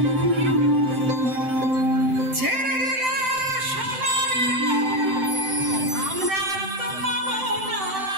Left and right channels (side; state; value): left; late; 7.8 ms